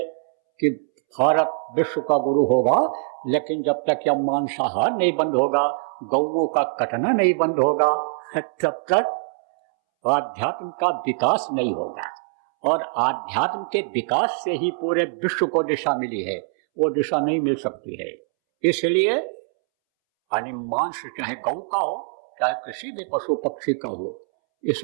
कि भारत विश्व का गुरु होगा, लेकिन जब तक यह मांसाहार नहीं बंद होगा, गौओं का कटना नहीं बंद होगा, तब तक आध्यात्म का विकास नहीं होगा। और आध्यात्म के विकास से ही पूरे विश्व को दिशा मिली है, वो दिशा नहीं मिल सकती है। इसलिए मांस चाहे गौ का हो, चाहे किसी भी पशु पक्षी का हो,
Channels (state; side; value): silent; left; 63 dB below the other